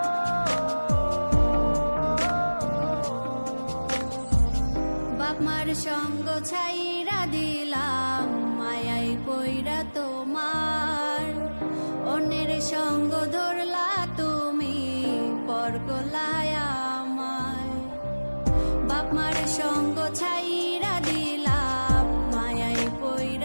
বাপ মার সঙ্গ ছাইরা দিলাম মায়াই পইরা তোমার, অন্যের সঙ্গ ধরলা তুমি পর গলায় আমায়। বাপ মার সঙ্গ ছাইরা দিলাম মায়াই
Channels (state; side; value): inverted; both; correlation -1.00